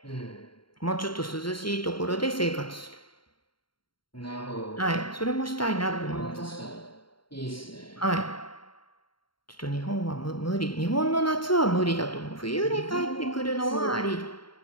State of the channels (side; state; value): right; late; 0.73 ms